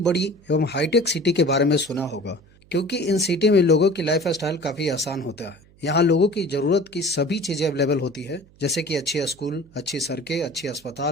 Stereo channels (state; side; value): noise; right; hum, 28 dB below the sound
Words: एवं हाईटेक सिटी के बारे में सुना होगा क्योंकि इन सिटी में लोगों की लाइफ स्टाइल काफी आसान होता है। यहाँ लोगों की जरूरत की सभी चीजें अवेलेबल होती है, जैसे कि अच्छी स्कूल, अच्छी सड़कें, अच्छी